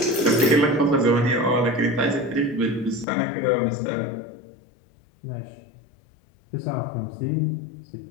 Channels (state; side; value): drops out; right; at 3.1 s